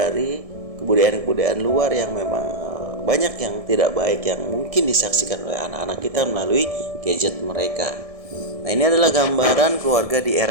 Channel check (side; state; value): left; late; 1.6 ms